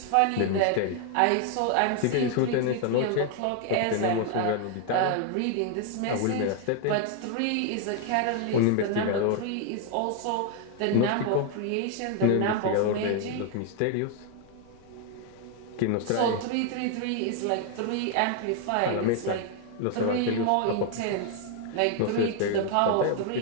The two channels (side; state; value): both; different; correlation 0.00